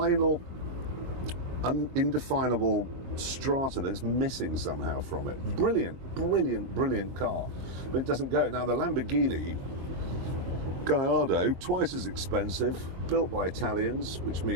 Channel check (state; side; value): late; left; 22 ms